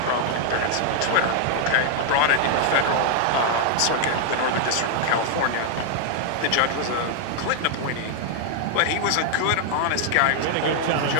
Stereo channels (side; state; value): both; different; correlation 0.00